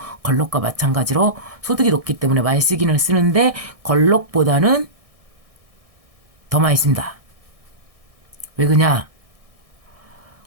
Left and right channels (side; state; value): left; late; 1.6 ms